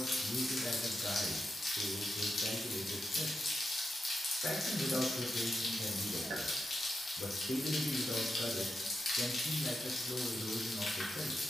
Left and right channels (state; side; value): normal; both; correlation 0.87